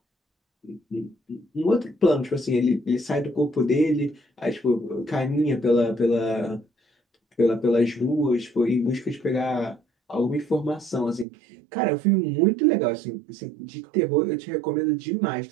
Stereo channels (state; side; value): drops out; left; at 11.2 s